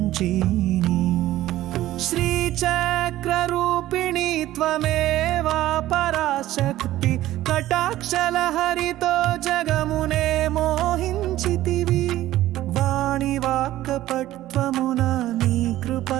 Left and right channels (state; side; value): quieter; left; 14.8 dB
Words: శ్రీచక్రరూపిణి త్వమేవా పరాశక్తి కటాక్షలహరితో జగమునే మోహించితివి వాణి వాక్కపట్వమున నీ